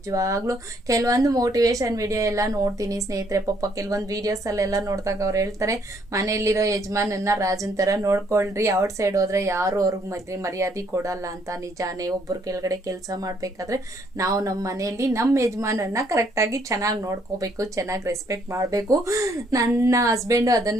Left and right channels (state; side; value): normal; both; correlation 0.68